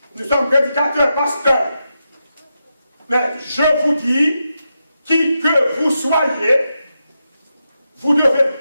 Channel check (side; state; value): both; inverted; correlation -0.87